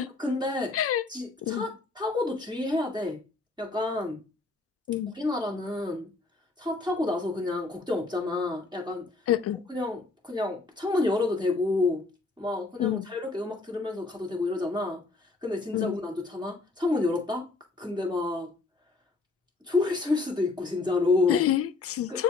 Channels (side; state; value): right; quieter; 3.7 dB